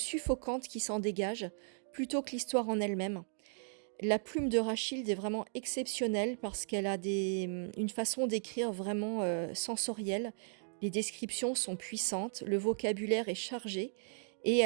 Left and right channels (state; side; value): silent; left; digital silence